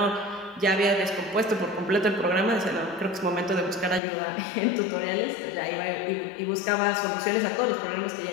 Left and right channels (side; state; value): right; drops out; at 4.0 s